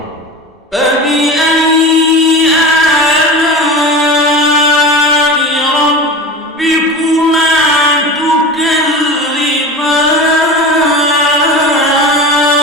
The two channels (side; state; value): both; normal; correlation 0.30